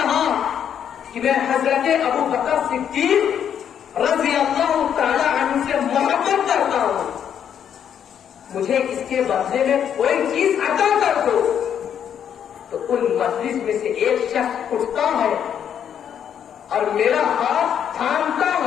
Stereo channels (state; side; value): quieter; right; 8.8 dB